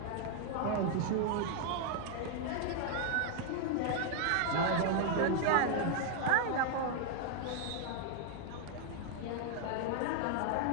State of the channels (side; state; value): both; different; correlation 0.00